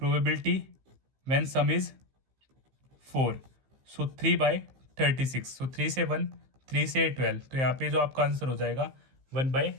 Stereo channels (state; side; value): late; left; 15 ms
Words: व्हेन सम इज 4, सो 3/36, सो 3 से 1, 3 से 12, तो यहाँ पे जो आपका आंसर हो जाएगा